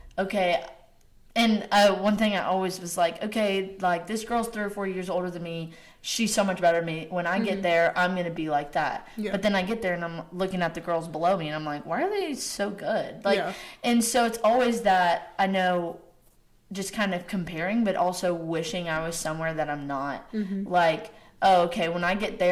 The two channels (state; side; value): identical; both; correlation 1.00